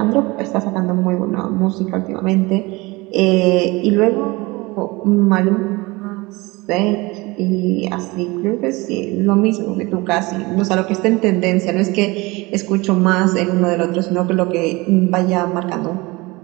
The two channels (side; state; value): left; quieter; 23.3 dB